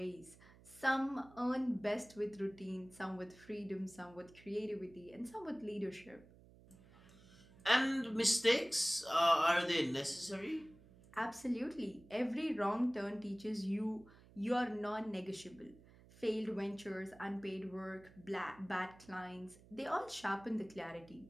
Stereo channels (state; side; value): noise; right; hum, 23 dB below the sound